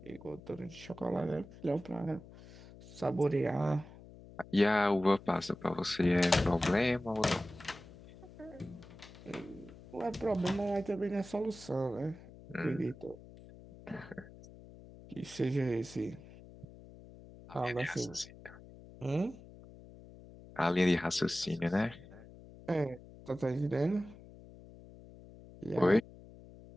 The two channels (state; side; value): noise; left; hum, 19 dB below the sound